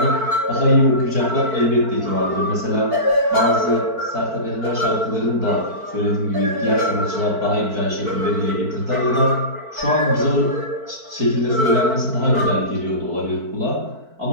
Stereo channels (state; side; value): late; left; 4.5 ms